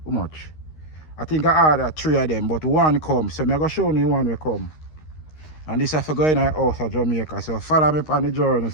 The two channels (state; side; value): late; right; 13 ms